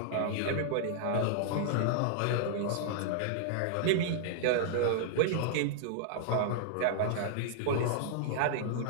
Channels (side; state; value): both; different; correlation -0.01